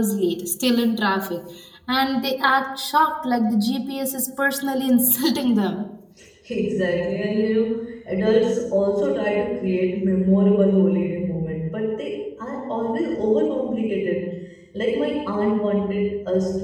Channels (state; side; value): identical; both; correlation 1.00